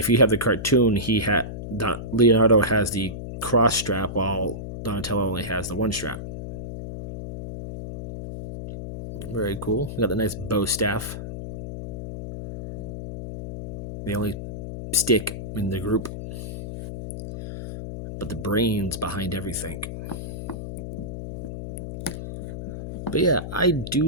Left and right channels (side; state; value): left; noise; hum, 8 dB below the sound